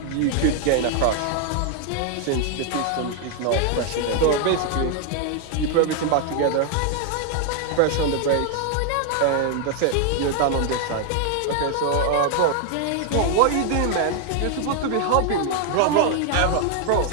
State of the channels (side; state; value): both; different; correlation 0.00